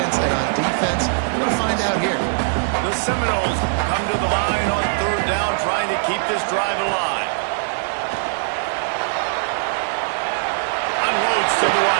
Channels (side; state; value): left; silent; digital silence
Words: and on defense. We're going to find out here. The Seminoles come to the line on third down, trying to keep this drive alive. Unloads to the